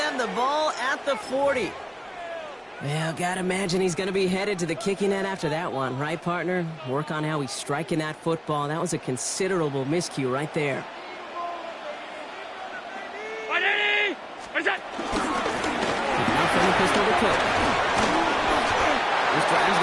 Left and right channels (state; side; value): identical; both; correlation 1.00